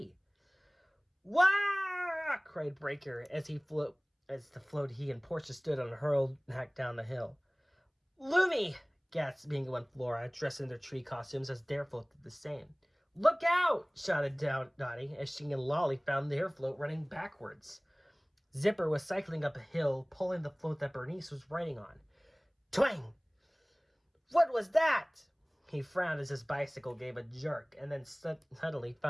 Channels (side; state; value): both; identical; correlation 1.00